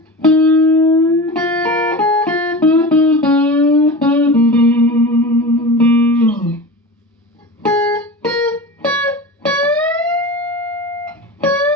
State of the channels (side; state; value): both; normal; correlation 0.30